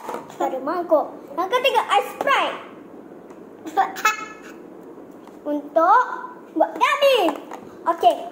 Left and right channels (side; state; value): both; identical; correlation 1.00